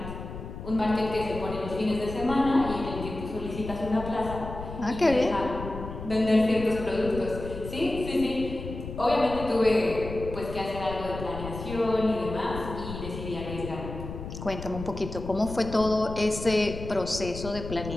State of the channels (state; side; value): noise; left; rumble, 9 dB below the sound